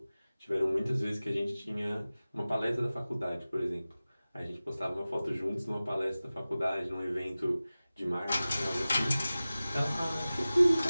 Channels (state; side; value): inverted; both; correlation -0.97